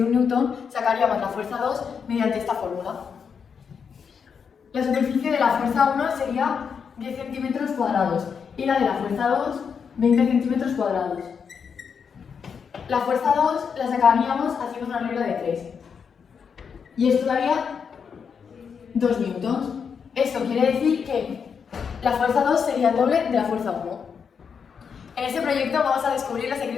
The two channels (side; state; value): right; quieter; 6.5 dB